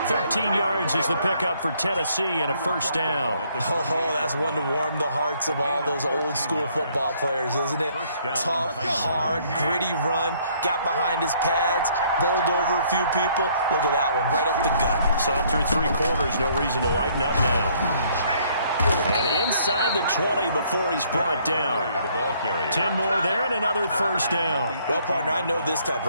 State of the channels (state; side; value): inverted; both; correlation -0.64